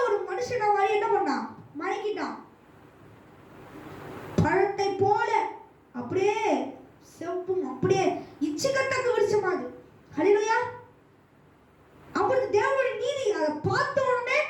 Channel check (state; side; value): identical; both; correlation 1.00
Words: ஒரு மனுஷனை மாதிரி என்ன பண்ணான்? மயங்கிட்டான். பழத்தை போல அப்படியே செப்பும் அப்படியே இச்சிக்கட்டக்கு விரிச்சமாது. ஹல்லேலூயா. அப்பொழுது தேவனுடைய நீதி அதை பார்த்த உடனே